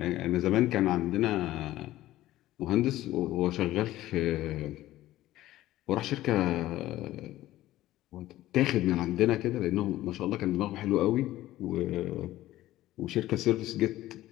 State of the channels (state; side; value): quieter; right; 15.3 dB